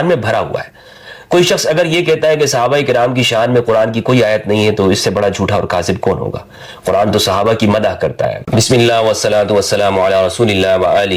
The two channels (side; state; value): both; identical; correlation 1.00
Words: میں بھرا ہوا ہے۔ کوئی شخص اگر یہ کہتا ہے کہ صحابہ کرام کی شان میں قرآن کی کوئی آیت نہیں ہے تو اس سے بڑا جھوٹا اور کاذب کون ہوگا؟ قرآن تو صحابہ کی مدح کرتا ہے۔ بسم اللہ والصلاة والسلام علی رسول اللہ